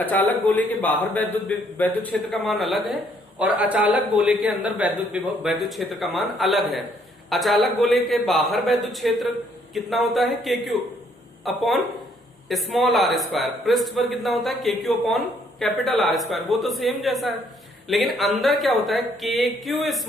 गोले के बाहर वैद्युत क्षेत्र का मान अलग है और अचालक गोले के अंदर वैद्युत क्षेत्र का मान अलग है। अचालक गोले के बाहर वैद्युत क्षेत्र कितना होता है, KQ upon small r square. पृष्ठ पर कितना होता है, KQ upon capital R square. वो तो सेम जैसा है, लेकिन अंदर क्या होता है, KQ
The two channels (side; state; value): both; normal; correlation 0.67